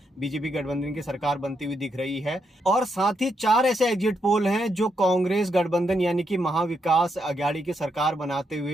बीजेपी गठबंधन की सरकार बनती हुई दिख रही है। और साथ ही 4 ऐसे एग्जिट पोल हैं जो कांग्रेस गठबंधन यानी कि महाविकास अघाड़ी की सरकार बनाते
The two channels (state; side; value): normal; both; correlation 0.80